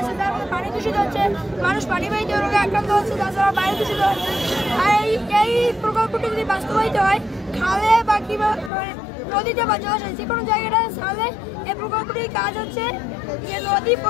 তার মধ্যে পানি দূষিত হচ্ছে মানুষ পানিবাহিত রোগে আক্রান্ত হচ্ছে তাছাড়া বায়ু দূষিত হচ্ছে আর এই প্রকল্পটি যদি বাস্তবায়িত হয় খালে বা কিংবা নদীতে বা জলাশয় যে কোনো জায়গাটা তাহলে এই প্রকল্পটির কাজ হচ্ছে যে নদী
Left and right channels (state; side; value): drops out; right; at 8.7 s